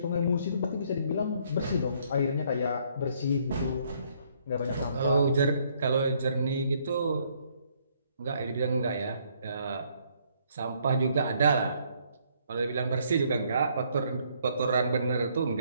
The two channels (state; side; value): inverted; both; correlation -0.67